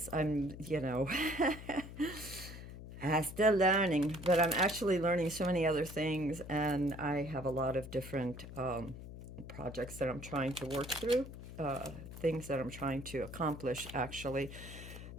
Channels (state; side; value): noise; left; hum, 12 dB below the sound